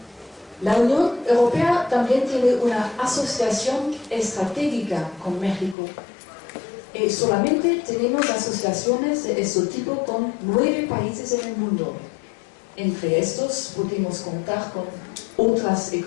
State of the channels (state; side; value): drops out; right; at 5.8 s